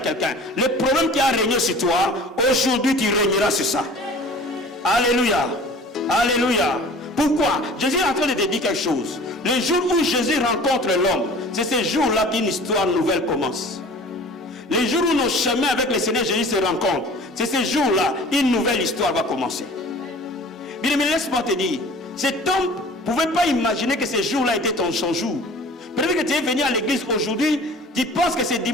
le problème qui a régné sur toi, aujourd'hui tu régneras sur ça. Alléluia. Alléluia. Pourquoi? Jésus est en train de te dire quelque chose. Le jour où Jésus rencontre l'homme, c'est ce jour-là qu'une histoire nouvelle commence. Le jour où nos chemins avec le Seigneur Jésus se rencontrent, c'est ce jour-là, une nouvelle histoire va commencer. Bien, mais laisse-moi te dire, cet homme ne pouvait pas imaginer que ce jour-là était son jour. Peut-être que tu es venu à l'église aujourd'hui, tu penses que ce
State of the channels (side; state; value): both; normal; correlation 0.44